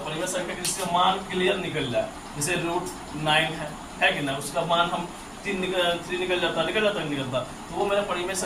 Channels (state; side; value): identical; both; correlation 1.00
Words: परिमेय संख्या जिसका मान क्लियर निकल जाए, जैसे √9 है कि ना उसका मान हम 3 निकल जाता तो वो मेरा परिमेय